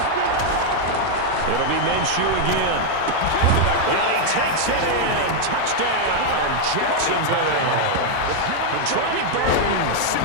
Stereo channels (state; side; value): different; both; correlation 0.00